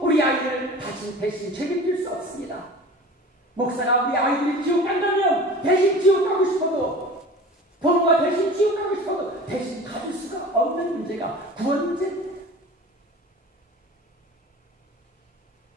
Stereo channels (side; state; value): both; normal; correlation 0.39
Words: 우리 아이들을 대신 책임질 수 없습니다. 목사가 우리 아이들이 지옥 간다면 대신 지옥 가고 싶어도, 부모가 대신 지옥 가고 싶어도 대신 가질 수가 없는 문제가 구원 문제입니다.